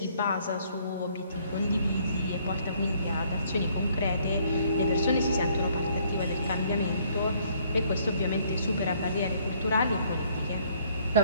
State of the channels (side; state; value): both; inverted; correlation -0.64